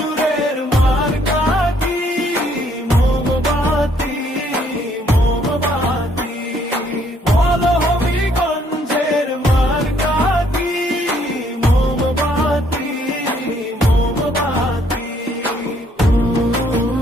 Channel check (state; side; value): normal; both; correlation 0.66